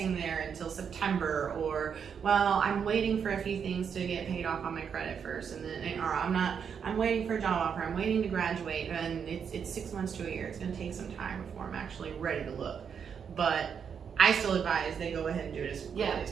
there until September, or, well, I'm waiting for a few things to get paid off on my credit first, and then, or I'm waiting for a job offer, I'm waiting to graduate, and it's 6 months to a year. It's gonna take some time before I'm actually ready to look. But I still advise they go ahead and do it as quickly as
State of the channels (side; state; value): left; quieter; 7.1 dB